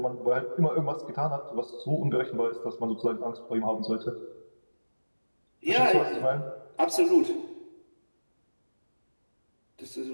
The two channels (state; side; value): inverted; both; correlation -1.00